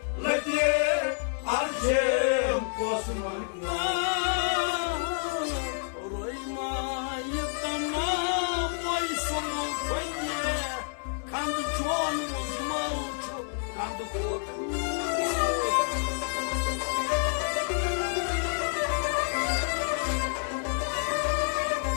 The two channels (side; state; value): right; silent; 56 dB below the other